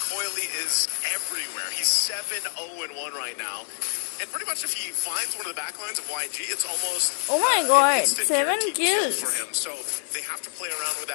Coily is everywhere. He's 7-0-1 right now. And pretty much if he finds one of the backlines of YG, it's almost Oh my an God, instant 7 guaranteed kill kills. for him. So they have to play around with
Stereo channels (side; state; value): right; silent; 59 dB below the other